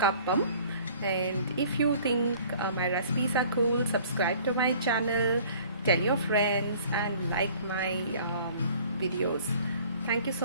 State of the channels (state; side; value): inverted; both; correlation -0.52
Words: And if you think my recipes are cool, subscribe to my channel, tell your friends, and like my videos. Thank you